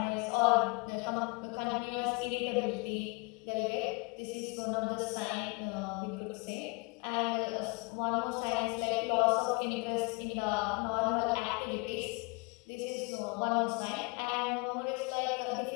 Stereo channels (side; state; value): right; quieter; 30.2 dB